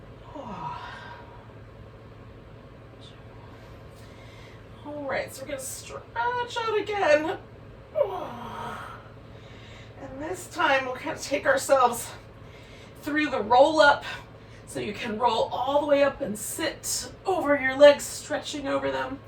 All right, so we're going to stretch out again. And this time we'll kind of take ourselves through the roll up So you can roll all the way up and sit over your legs, stretching over them,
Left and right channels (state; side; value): identical; both; correlation 1.00